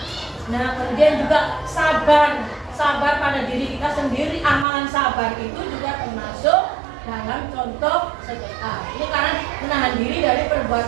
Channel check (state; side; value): drops out; left; at 4.7 s